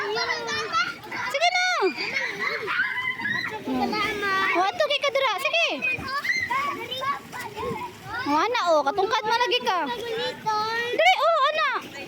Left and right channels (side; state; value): both; identical; correlation 1.00